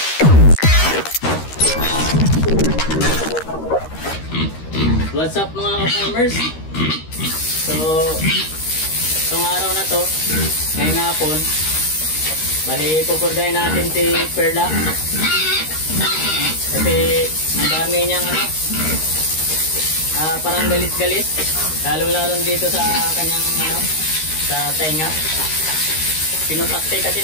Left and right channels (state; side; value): late; right; 13 ms